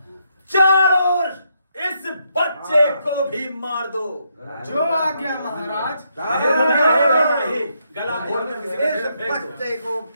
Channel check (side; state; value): both; inverted; correlation -0.77